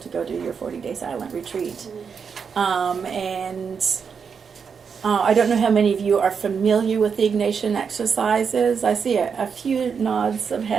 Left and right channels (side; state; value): left; quieter; 6.3 dB